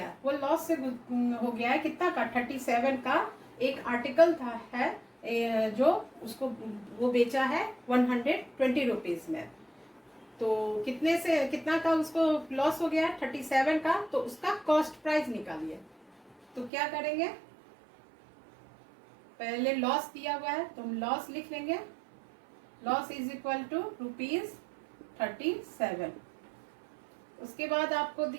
वो लॉस से हो गया है कितना का 37 का एक आर्टिकल था है जो उसको वो बेचा है 120 रुपीज में। तो कितने से कितना का उसको लॉस हो गया 37 का, तो उसका कॉस्ट प्राइस निकालिए। तो क्या करेंगे, पहले लॉस दिया हुआ है तो हम लॉस लिख लेंगे, loss is equal to rupees 37। उसके बाद आपको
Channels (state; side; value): drops out; left; at 16.7 s